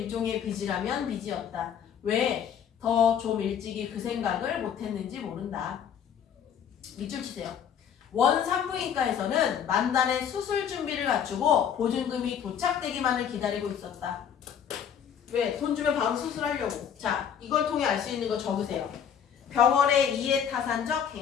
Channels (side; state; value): right; quieter; 8.3 dB